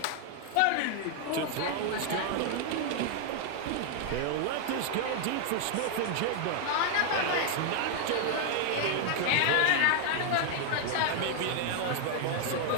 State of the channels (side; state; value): both; different; correlation 0.00